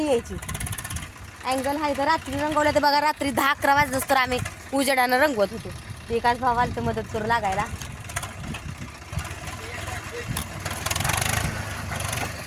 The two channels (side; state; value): both; identical; correlation 1.00